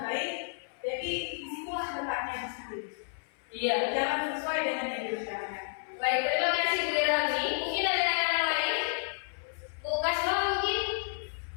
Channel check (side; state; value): right; silent; 57 dB below the other